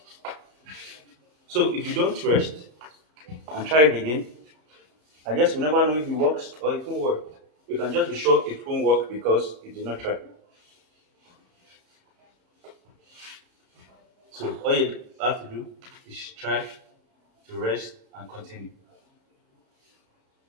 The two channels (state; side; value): late; left; 32 ms